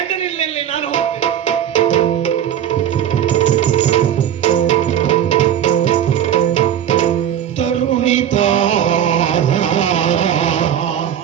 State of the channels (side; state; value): left; quieter; 10.1 dB